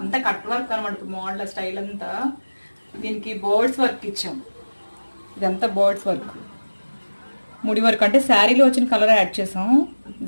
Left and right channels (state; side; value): inverted; both; correlation -1.00